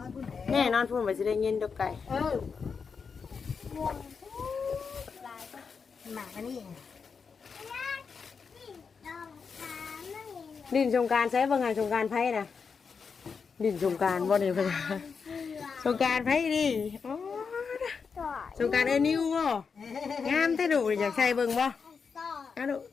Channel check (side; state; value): right; quieter; 5.6 dB